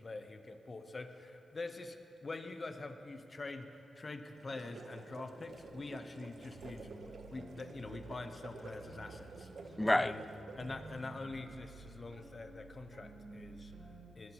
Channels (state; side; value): normal; both; correlation 0.96